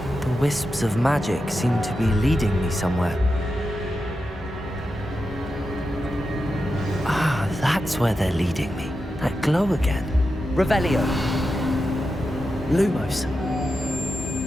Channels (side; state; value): both; normal; correlation 0.89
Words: The wisps of magic seem to be leading me somewhere. Ah, that's where they're leading me. That glow again. Revelio. Lumos.